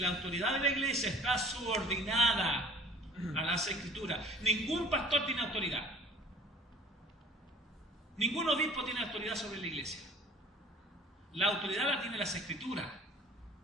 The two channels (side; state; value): both; normal; correlation 0.49